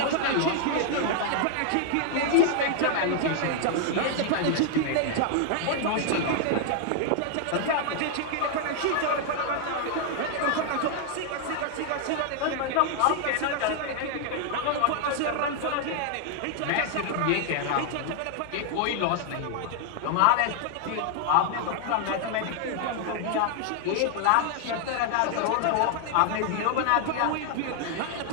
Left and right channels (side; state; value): both; different; correlation 0.00